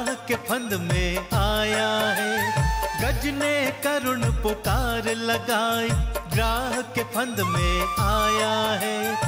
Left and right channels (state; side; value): identical; both; correlation 1.00